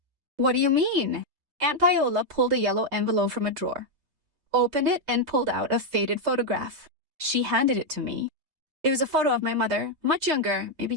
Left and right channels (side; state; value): left; late; 5.3 ms